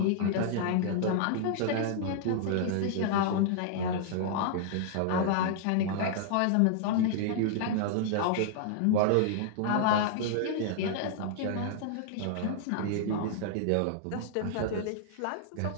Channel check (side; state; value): both; different; correlation -0.01